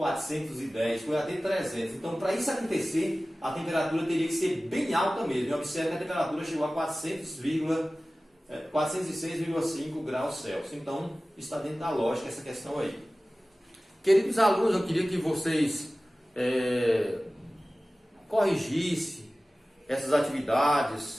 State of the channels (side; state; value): both; normal; correlation 0.97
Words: foi até 300. Então, para isso acontecer, a temperatura teria que ser bem alta mesmo. E observe que a temperatura chegou a 406,5 graus Celsius. Então, está dentro da lógica essa questão aí. Queridos alunos, eu queria que vocês corrigissem essas